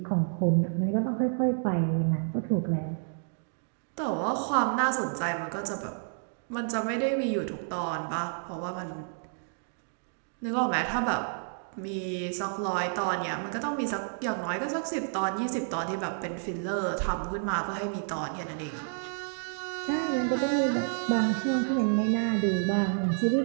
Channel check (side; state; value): left; silent; digital silence